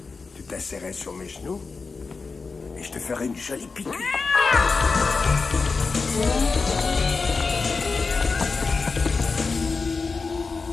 Tu t'asserrais sur mes genoux et je te ferais une jolie piqûre.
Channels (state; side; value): quieter; right; 4.5 dB